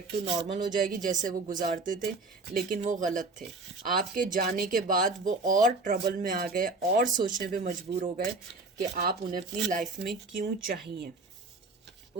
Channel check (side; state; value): left; quieter; 3.4 dB